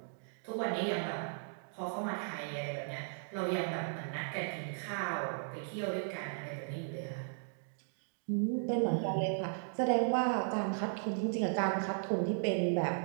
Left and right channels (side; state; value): left; silent; digital silence